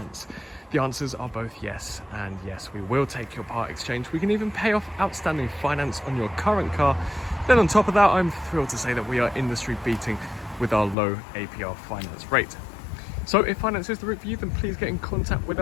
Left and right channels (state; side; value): drops out; right; at 11.0 s